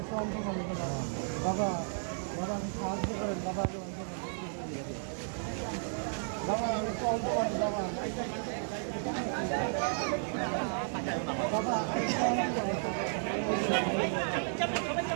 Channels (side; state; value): left; silent; digital silence